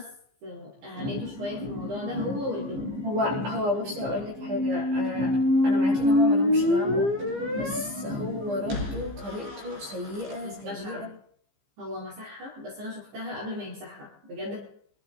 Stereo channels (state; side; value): late; left; 15 ms